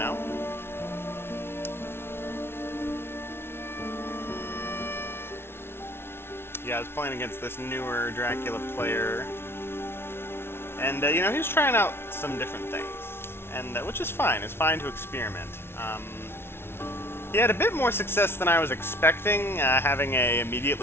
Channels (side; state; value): right; late; 0.12 ms